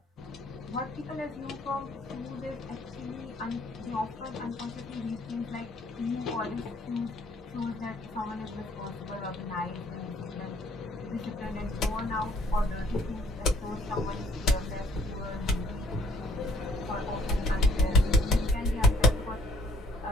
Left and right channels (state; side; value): normal; both; correlation 0.60